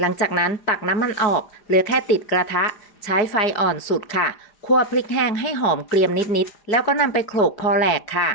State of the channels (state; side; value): late; right; 4.9 ms